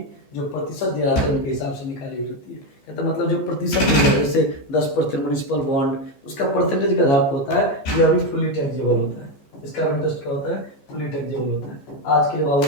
जो प्रतिशत दिया जाता है उनके हिसाब से निकाली हुई रहती है। कहते मतलब जो प्रतिशत दिया है, जैसे 10% म्युनिसिपल बॉन्ड, उसका परसेंटेज के आधार पर होता है, ये अभी फुली टैक्सेबल होता है। इसका इंटरेस्ट क्या होता है? फुली टैक्सेबल होता है। आज के लिए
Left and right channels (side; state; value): right; late; 15 ms